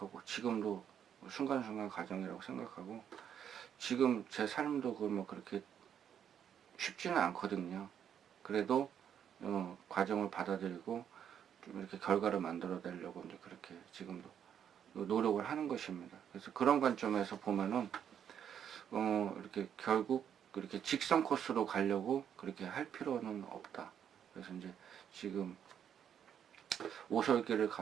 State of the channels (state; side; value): quieter; left; 8.8 dB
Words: 지금도 순간순간 과정이라고 생각하고, 지금 제 삶도 뭐 그렇게 쉽지는 않거든요. 그래도 과정을 받아들이고 좀 이렇게 결과를 만들어내려고 이제 그렇게 지금도 노력을 하는 것입니다. 그래서 그런 관점에서 보면은 이렇게 결국 그렇게 직선 코스로 가려고 그렇게 할 필요는 없다. 그래서 이제 지금 오솔길을